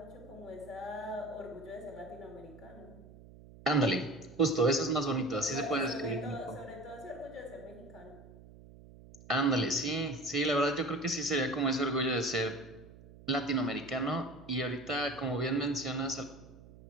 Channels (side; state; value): right; noise; hum, 20 dB below the sound